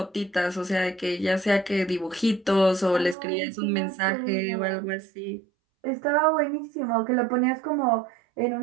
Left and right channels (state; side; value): drops out; left; at 3.2 s